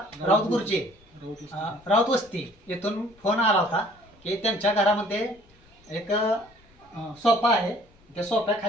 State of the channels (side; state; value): left; noise; rumble, 30 dB below the sound